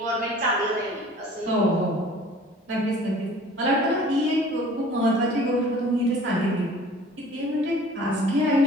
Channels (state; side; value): normal; both; correlation 0.48